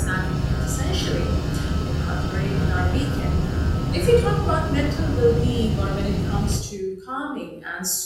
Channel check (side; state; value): both; identical; correlation 1.00